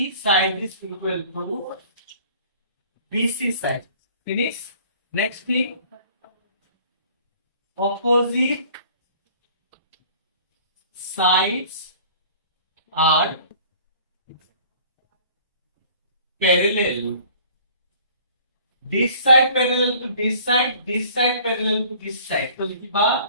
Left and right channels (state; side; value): inverted; both; correlation -0.52